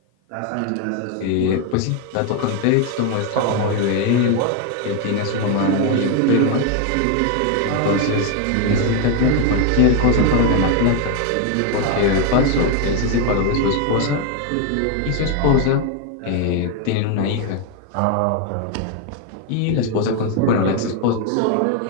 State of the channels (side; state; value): both; different; correlation 0.01